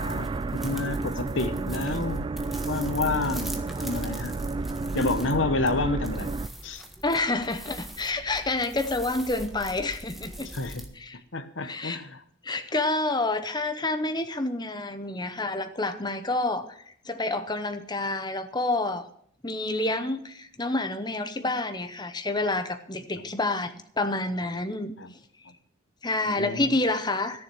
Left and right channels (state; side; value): normal; both; correlation 0.27